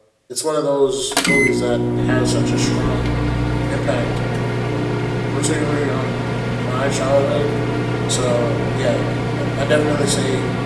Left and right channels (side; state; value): both; identical; correlation 1.00